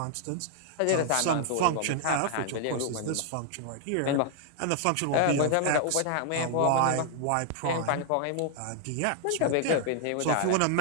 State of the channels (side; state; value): both; different; correlation 0.00